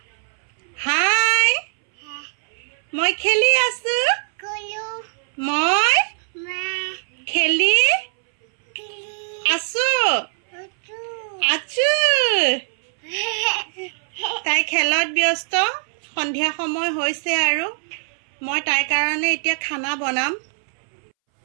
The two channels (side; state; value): left; silent; 64 dB below the other